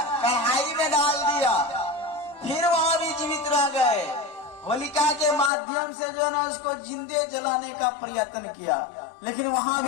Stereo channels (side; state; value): right; drops out; at 5.5 s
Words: कढ़ाई में डाल दिया, फिर वहां भी जीवित रह गए। होलिका के माध्यम से जो ना उसको जिंदे जलाने का प्रयत्न किया, लेकिन वहां